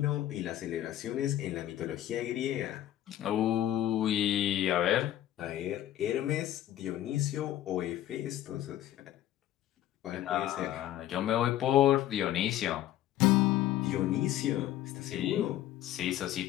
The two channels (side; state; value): right; quieter; 13.0 dB